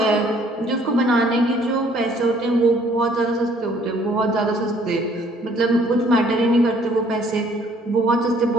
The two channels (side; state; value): both; normal; correlation 0.60